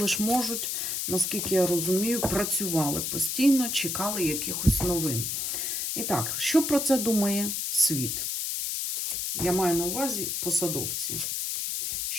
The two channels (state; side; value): noise; left; hiss, 1 dB below the sound